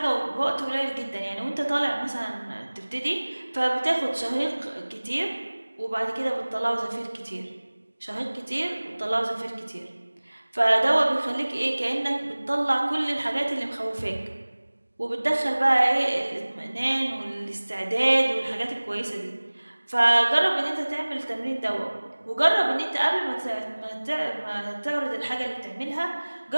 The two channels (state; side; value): inverted; both; correlation -1.00